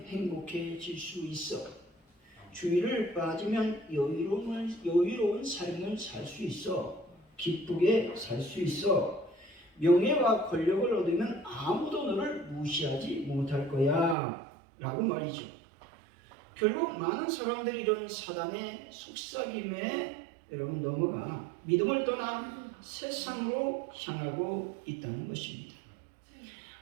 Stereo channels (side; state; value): left; drops out; at 14.2 s